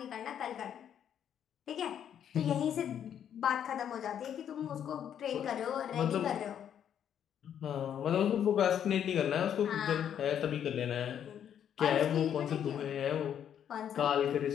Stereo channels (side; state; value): right; quieter; 9.3 dB